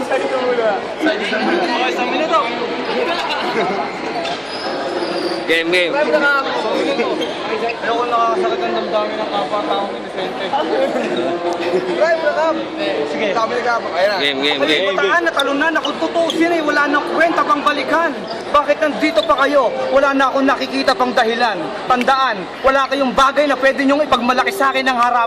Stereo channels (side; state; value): left; noise; hum, 29 dB below the sound